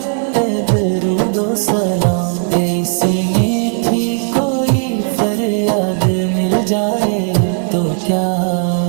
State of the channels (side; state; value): left; silent; 62 dB below the other